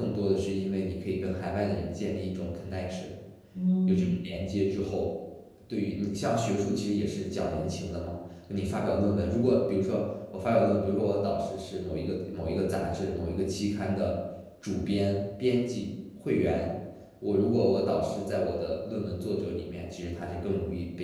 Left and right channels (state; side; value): identical; both; correlation 1.00